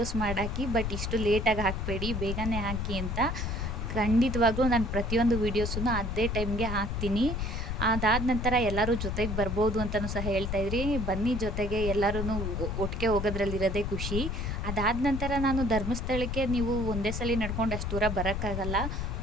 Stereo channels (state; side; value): noise; left; rumble, 2 dB below the sound